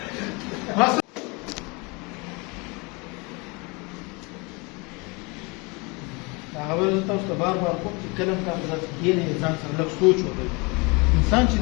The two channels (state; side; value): quieter; right; 28.5 dB